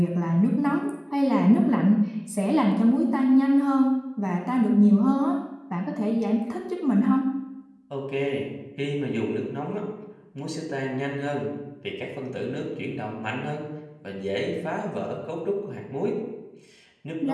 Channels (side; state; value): both; identical; correlation 1.00